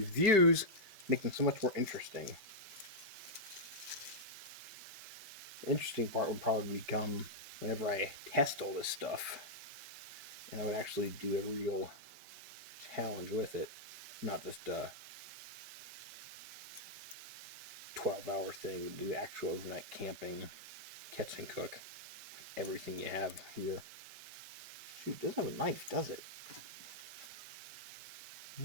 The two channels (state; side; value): late; left; 5.1 ms